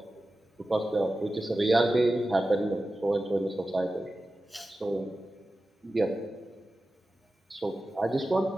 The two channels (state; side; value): normal; both; correlation 0.94